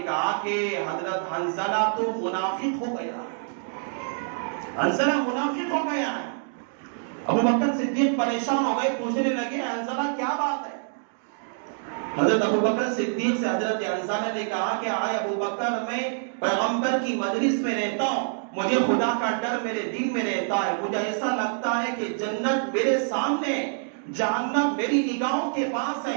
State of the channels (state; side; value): silent; left; digital silence